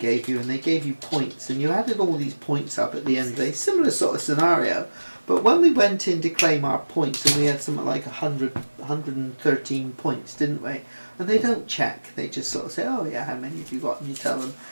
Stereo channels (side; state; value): both; inverted; correlation -1.00